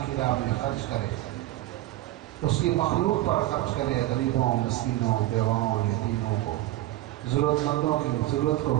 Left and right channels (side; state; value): left; quieter; 15.7 dB